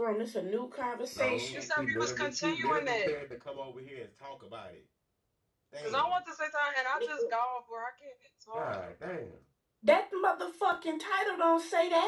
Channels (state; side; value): identical; both; correlation 1.00